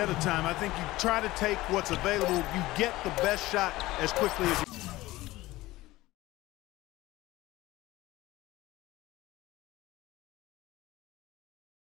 of time. I think you try to take what's available. You get the best shot as quickly as you can.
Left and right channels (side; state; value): right; quieter; 18.1 dB